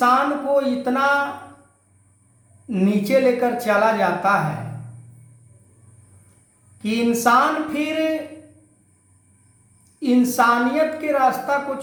को इतना नीचे लेकर चला जाता है कि इंसान फिर इंसानियत के रास्ता को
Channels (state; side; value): identical; both; correlation 1.00